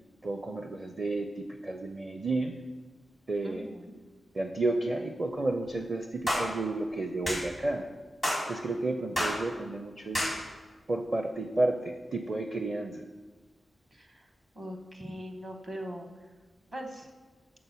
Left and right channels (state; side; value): normal; both; correlation 0.91